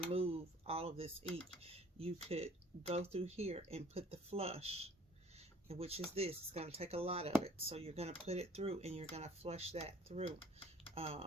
all of this ink. You could go through here and put the flush, which is this. It's going to take a lot of it, so you're going to put it through and you're going to flush that through.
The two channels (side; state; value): both; normal; correlation 0.54